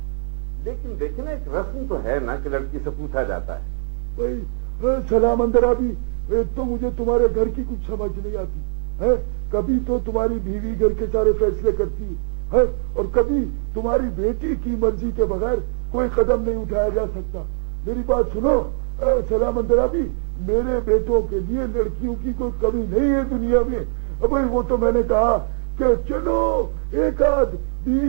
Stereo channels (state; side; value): silent; left; digital silence